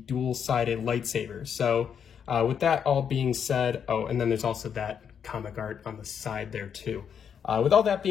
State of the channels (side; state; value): right; quieter; 7.7 dB